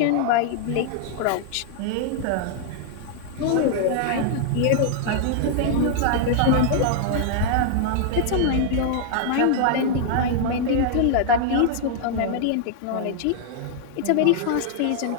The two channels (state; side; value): different; both; correlation -0.01